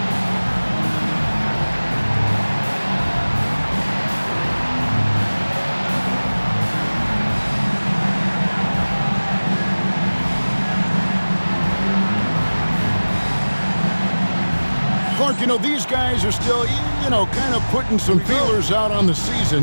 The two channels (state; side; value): inverted; both; correlation -1.00